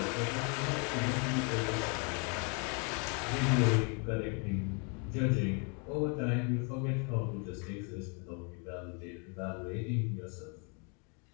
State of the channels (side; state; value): right; quieter; 35.7 dB